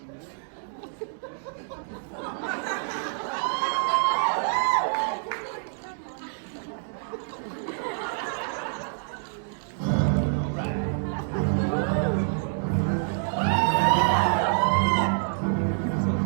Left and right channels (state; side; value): silent; left; digital silence